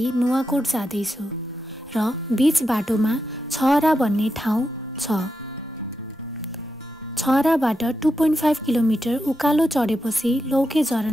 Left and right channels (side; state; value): both; normal; correlation 0.87